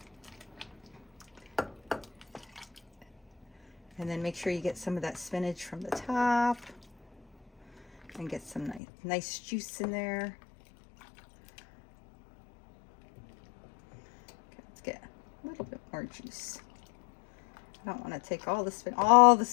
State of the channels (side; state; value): right; drops out; at 8.8 s